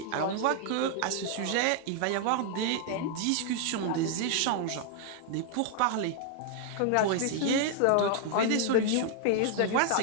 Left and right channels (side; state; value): both; different; correlation 0.00